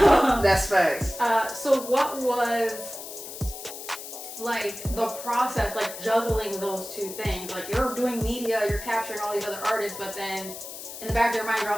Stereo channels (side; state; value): left; noise; hiss, 11 dB below the sound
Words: facts. So what was like the process, like juggling those two things? Like you're doing media, you're capturing all these other artists, but then in the back of your mind, you're